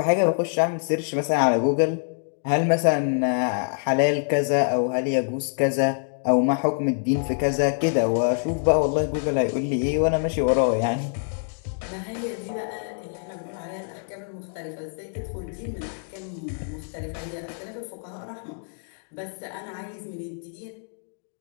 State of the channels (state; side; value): silent; right; digital silence